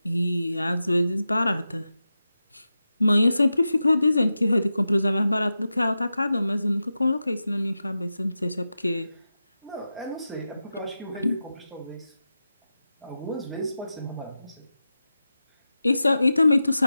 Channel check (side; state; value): both; inverted; correlation -0.92